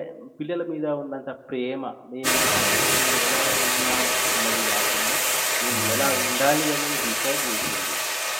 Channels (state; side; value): identical; both; correlation 1.00